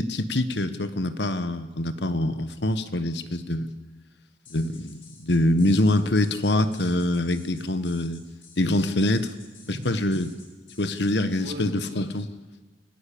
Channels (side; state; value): both; normal; correlation 0.66